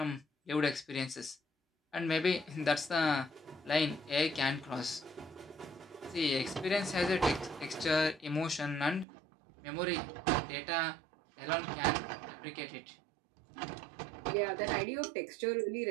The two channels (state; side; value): drops out; left; at 9.1 s